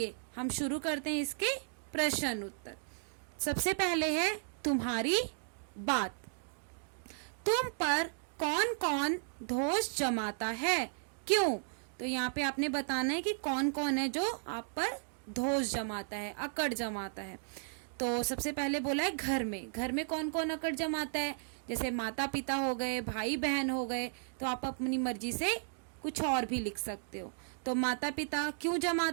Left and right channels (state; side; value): silent; left; digital silence